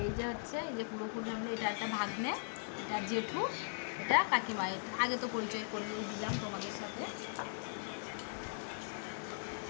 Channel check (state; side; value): silent; right; digital silence